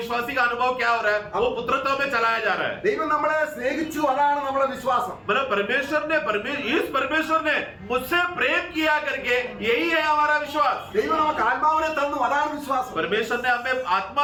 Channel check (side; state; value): both; identical; correlation 1.00